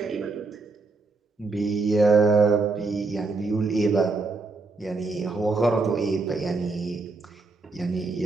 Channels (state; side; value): quieter; left; 3.7 dB